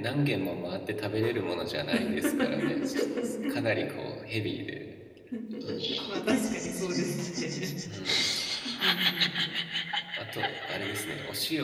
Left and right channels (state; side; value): identical; both; correlation 1.00